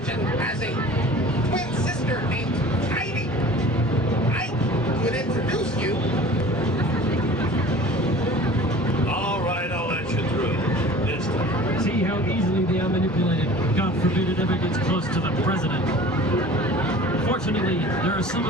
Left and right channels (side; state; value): both; normal; correlation 0.43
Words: has a twin sister named Heidi. I could introduce you. All right, I'll let you through. ever gets close to the president. Fortunately, there are some